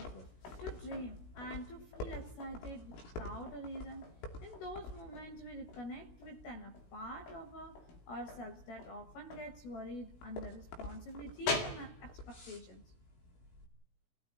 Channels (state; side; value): late; right; 16 ms